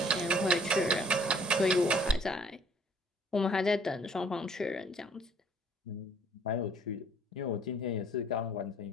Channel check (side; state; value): both; normal; correlation 0.57